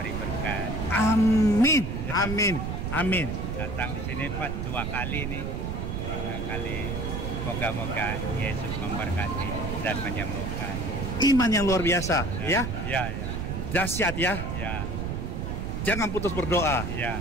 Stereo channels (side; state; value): right; noise; rumble, 3 dB below the sound